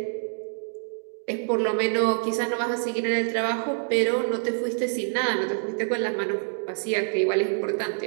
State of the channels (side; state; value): left; silent; digital silence